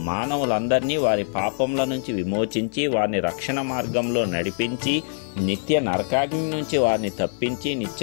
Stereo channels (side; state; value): right; silent; digital silence